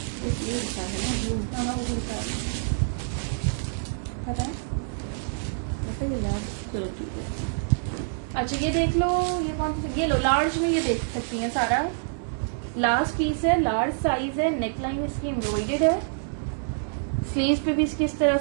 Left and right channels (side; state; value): left; silent; digital silence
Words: इसलिए लिखा है ना ब्लू। हाँ वो दिखा है, बताएं। ऐसे ही यार, चलो ठीक है। अच्छा ये देख लो, ये कौन सी, ये लो लार्ज में, ये देख सकती हैं सारा। लास्ट पीस है, लार्ज साइज है, नेकलाइन इसकी एम्ब्रॉइडेड है, स्लीव पे भी इसकी इस तरह